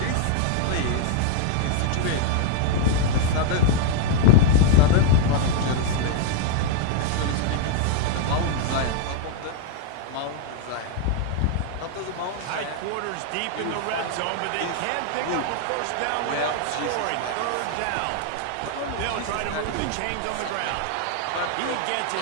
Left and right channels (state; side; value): different; both; correlation 0.00